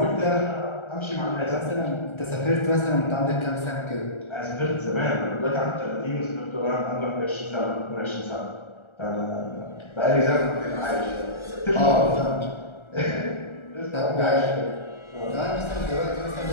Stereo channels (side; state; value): right; late; 1.4 ms